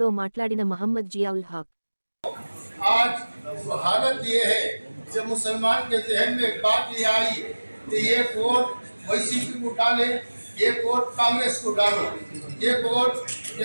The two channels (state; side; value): inverted; both; correlation -1.00